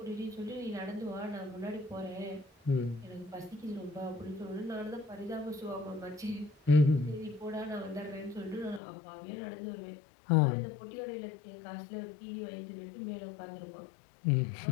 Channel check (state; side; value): drops out; right; at 8.8 s